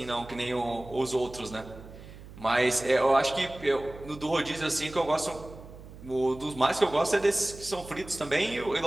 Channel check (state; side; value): noise; right; hum, 17 dB below the sound